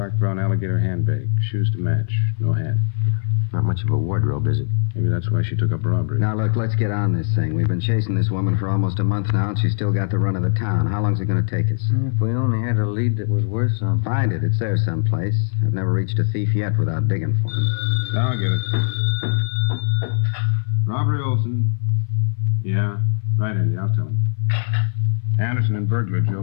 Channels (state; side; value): silent; right; 62 dB below the other